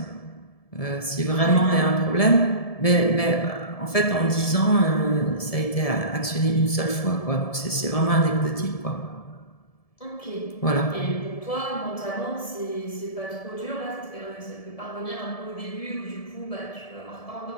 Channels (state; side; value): late; right; 1.7 ms